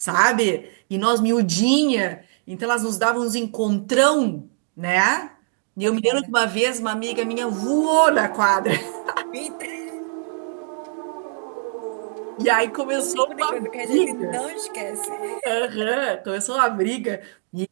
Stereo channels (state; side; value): silent; left; 64 dB below the other